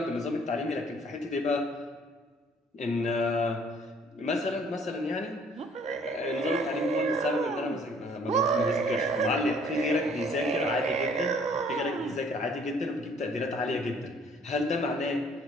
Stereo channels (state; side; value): normal; both; correlation 0.58